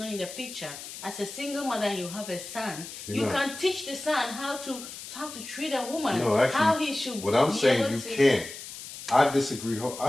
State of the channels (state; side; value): noise; left; hiss, 12 dB below the sound